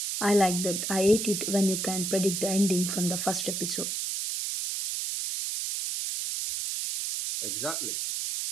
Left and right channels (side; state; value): right; noise; hiss, 2 dB below the sound